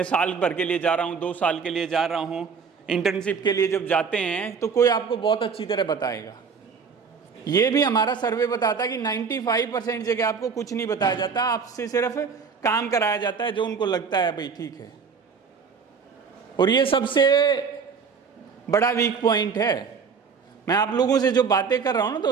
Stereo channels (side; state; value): left; quieter; 5.8 dB